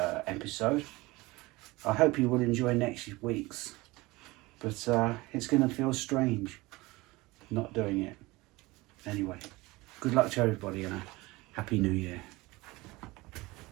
I hope you will enjoy next week's, but it's going to feel strange not doing it. Anyway, good luck to everybody and a happy new year.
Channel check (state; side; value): quieter; left; 21.6 dB